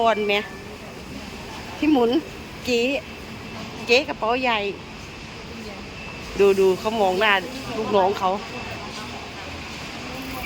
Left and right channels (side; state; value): both; identical; correlation 1.00